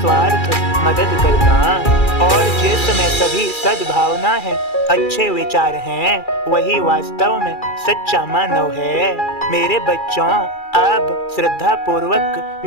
मदद करना। और जिसमें सभी सद्भावना है, अच्छे विचार हैं, वही वास्तव में सच्चा मानव है। मेरे बच्चों, अब श्रद्धा पूर्वक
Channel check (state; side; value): late; right; 2.3 ms